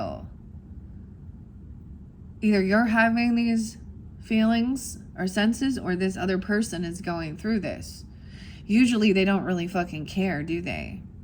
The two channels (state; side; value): identical; both; correlation 1.00